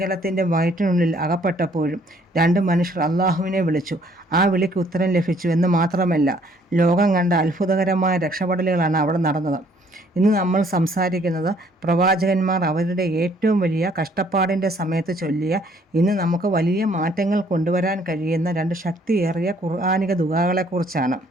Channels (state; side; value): normal; both; correlation 0.63